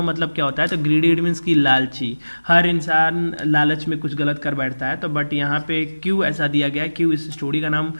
मतलब क्या होता है, तो ग्रीडी इट मीन्स की लालची। हर इंसान लालच में कुछ गलत कर बैठता है, तो बट यहाँ पे क्यों ऐसा दिया गया है, क्यों इस स्टोरी का नाम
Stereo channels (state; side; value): inverted; both; correlation -1.00